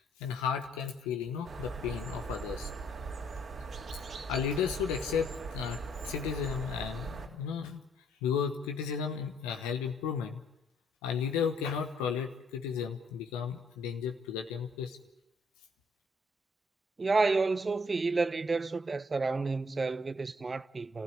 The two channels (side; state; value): both; normal; correlation 0.66